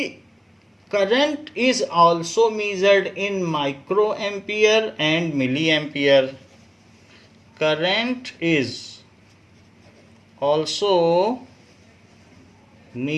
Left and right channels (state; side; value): identical; both; correlation 1.00